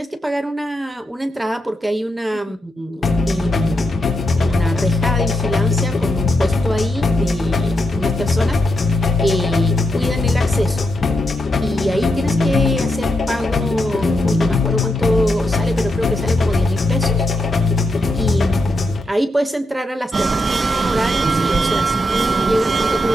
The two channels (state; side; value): normal; both; correlation 0.84